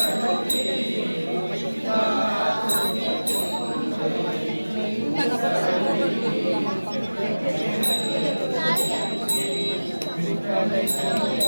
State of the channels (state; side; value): inverted; both; correlation -1.00